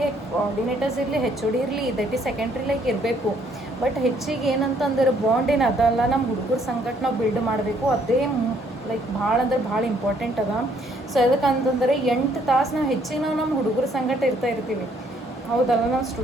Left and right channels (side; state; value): both; normal; correlation 0.66